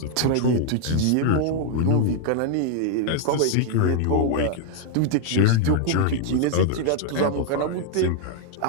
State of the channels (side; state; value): both; different; correlation 0.00